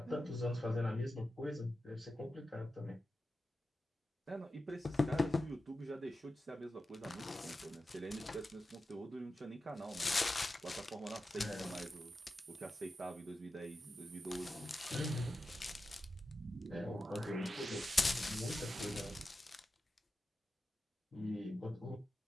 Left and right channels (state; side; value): normal; both; correlation 0.92